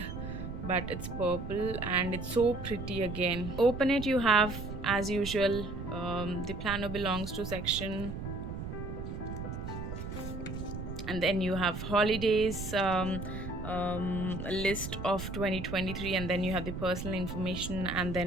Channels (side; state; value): right; noise; rumble, 7 dB below the sound